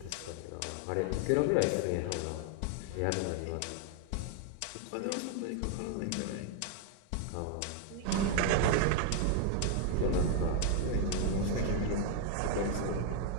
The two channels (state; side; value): different; both; correlation 0.00